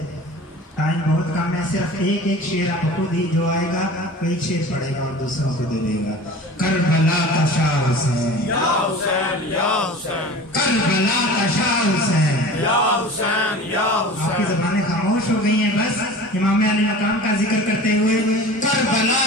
ٹائم بہت کم ہے, صرف ایک شعر آپ خود ہی جو آئے گا وہ ایک شعر پڑھے گا اور دوسروں کو دے دے گا. کربلا کا شاہ حسین یا حسین یا حسین, کربلا کا شاہ حسین یا حسین یا حسین. آپ کی زبانیں خاموش ہو گئی ہیں بس امام علی مقام کا ذکر کرتے ہوئے. کربلا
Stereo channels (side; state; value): both; normal; correlation 0.38